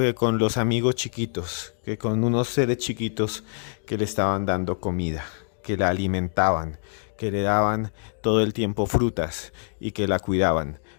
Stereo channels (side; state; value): right; silent; digital silence